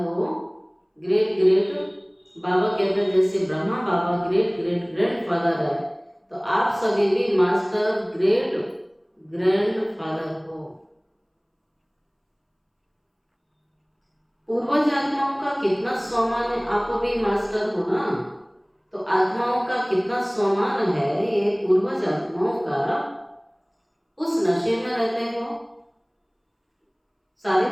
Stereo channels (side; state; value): both; identical; correlation 1.00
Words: ग्रेट ग्रेट बाबा कहते हैं जैसे ब्रह्मा बाबा ग्रेट ग्रेट ग्रैंडफादर है, तो आप सभी भी मास्टर ग्रेट ग्रैंडफादर हो। पूर्वज आत्माओं का कितना सम्मान है, आप भी मास्टर हो ना, तो आत्माओं का कितना सम्मान है ये पूर्वज आत्माओं का। उस नशे में रहते हो। सारे